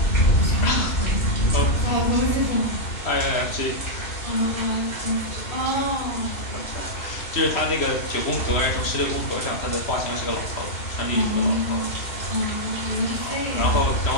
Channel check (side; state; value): right; late; 3.0 ms